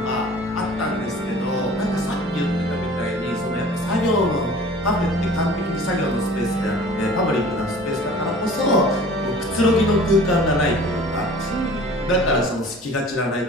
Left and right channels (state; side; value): normal; both; correlation 0.46